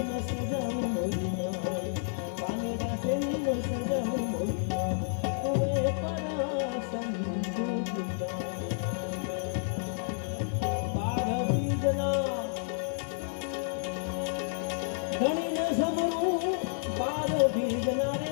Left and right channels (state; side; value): silent; right; 57 dB below the other